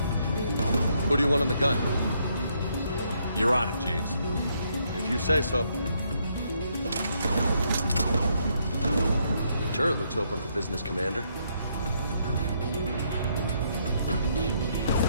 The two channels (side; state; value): both; inverted; correlation -0.73